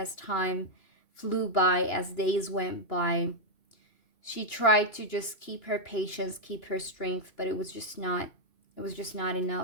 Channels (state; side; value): late; right; 2.9 ms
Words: time flew by, as days went by. She tried to just keep her patience, keep her strength, but it was just not